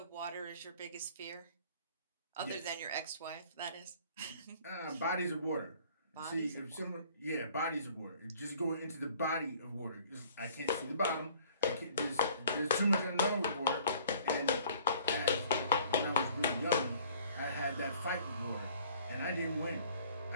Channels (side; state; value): both; inverted; correlation -0.55